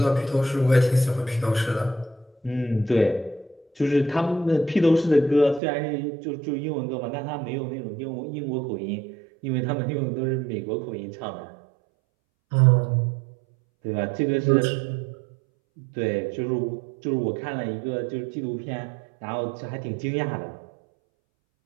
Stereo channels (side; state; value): left; drops out; at 5.6 s